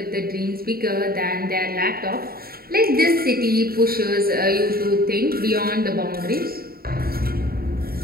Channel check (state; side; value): late; left; 0.44 ms